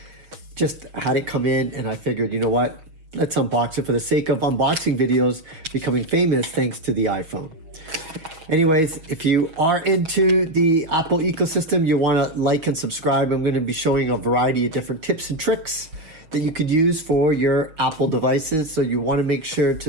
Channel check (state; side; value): late; left; 6.3 ms